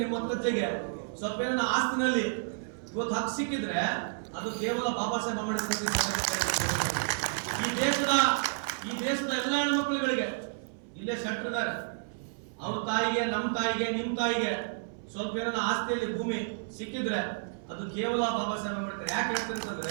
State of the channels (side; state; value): left; silent; 56 dB below the other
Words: ನಿಮ್ಮ ಮುತ್ತಜ್ಜಿಗೆ ಸ್ವಲ್ಪ ಏನನ್ನ ಆಸ್ತಿನಲ್ಲಿ ಇವತ್ತು ಹಕ್ಕು ಸಿಕ್ಕಿದ್ರೆ ಅದು ಕೇವಲ ಬಾಬಾ ಸಾಹೇಬ್ ಅಂಬೇಡ್ಕರ್. ಈ ದೇಶದ ಎಲ್ಲ ಹೆಣ್ಮಕ್ಳುಗಳಿಗೆ ಇಲ್ಲೇ ಶೆಟ್ರಿದ್ದಾರೆ. ಅವ್ರ ತಾಯಿಗೆ, ನಮ್ಮ ತಾಯಿಗೆ, ನಿಮ್ಮ ತಾಯಿಗೆ ಸ್ವಲ್ಪ ಏನನ್ನ ಆಸ್ತಿಯಲ್ಲಿ ಭೂಮಿ ಸಿಕ್ಕಿದ್ರೆ ಅದು ಕೇವಲ ಬಾಬಾ ಸಾಹೇಬ್ ಅಂಬೇಡ್ಕರ್. ಯಾಕೆ